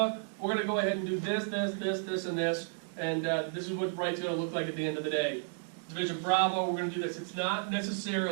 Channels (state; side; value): silent; left; digital silence